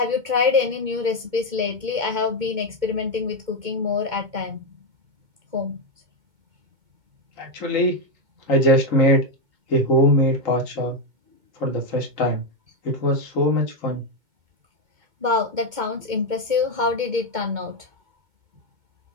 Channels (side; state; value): left; late; 2.2 ms